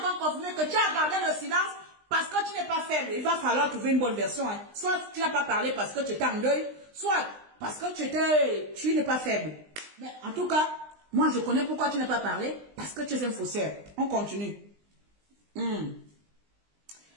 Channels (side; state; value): left; late; 20 ms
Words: confirmer que tu as gardé le silence parce que tu n'es pas faible. Il va falloir trouver une bonne version. Hein. Soit tu n'as pas parlé parce que tu étais en deuil, soit parce que tu n'es pas faible. Mais en tout cas, moi je connais pourquoi tu n'as pas parlé. Parce que tu es un faussaire. On continue. Il